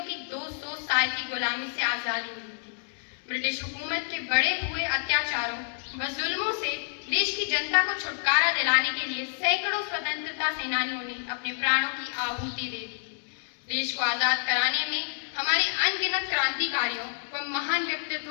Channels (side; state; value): right; silent; digital silence